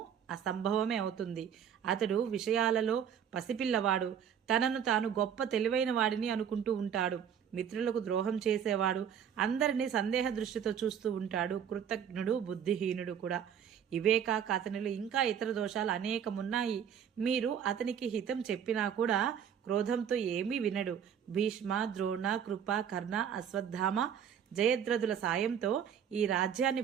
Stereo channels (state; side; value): quieter; left; 8.4 dB